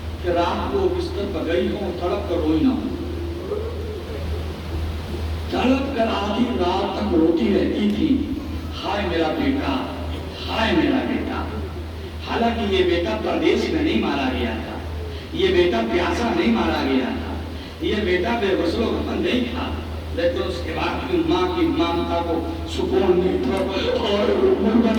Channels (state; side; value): identical; both; correlation 1.00